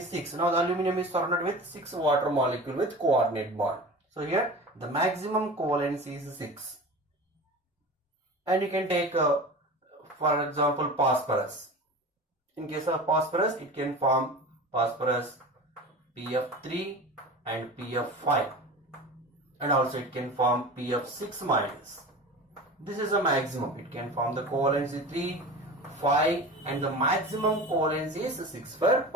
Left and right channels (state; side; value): normal; both; correlation 0.34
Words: 6. Now the aluminum is surrounded with 6 water molecule with coordinate bond. So here the maximum covalency is 6. And you can take for example phosphorus. In case of phosphorus, it can form phosphorus PF3 and PF5. And also it can form PF6 minus. This is a maximum. It can form the covalency 3, 5 and the maximum covalency is 6 for